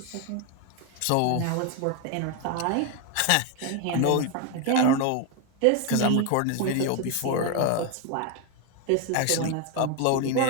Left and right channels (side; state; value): both; different; correlation 0.01